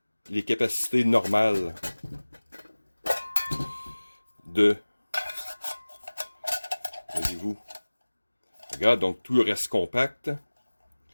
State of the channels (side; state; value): both; inverted; correlation -1.00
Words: les capacités normales de, voyez-vous, regarde, donc tout reste compact,